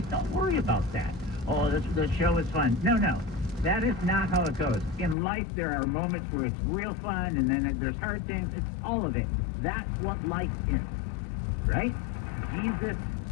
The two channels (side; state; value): right; drops out; at 5.2 s